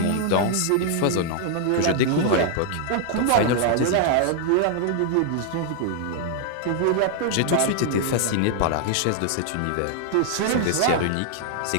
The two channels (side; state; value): both; different; correlation 0.00